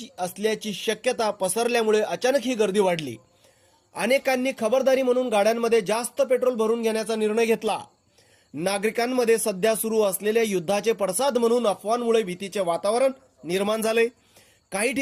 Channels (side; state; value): both; identical; correlation 1.00